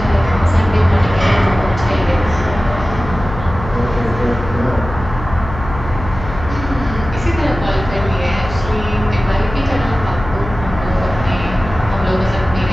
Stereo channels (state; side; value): noise; left; hum, 10 dB below the sound